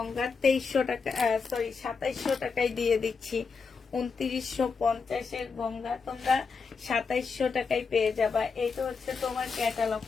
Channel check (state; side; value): quieter; right; 5.1 dB